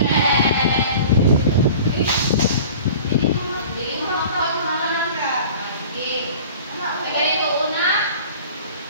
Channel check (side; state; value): both; inverted; correlation -0.42